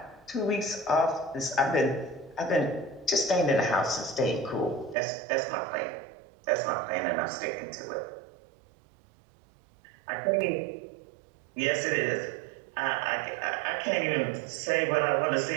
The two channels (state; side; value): drops out; left; at 5.0 s